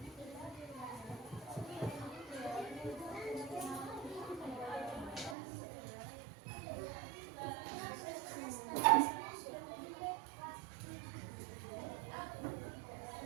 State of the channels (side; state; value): left; drops out; at 5.4 s